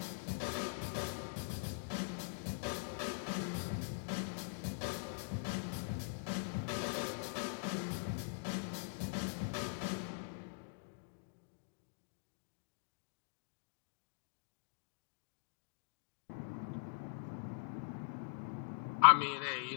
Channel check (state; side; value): silent; right; digital silence